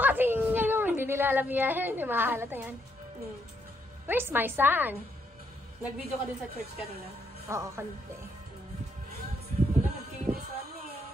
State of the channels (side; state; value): both; normal; correlation 0.75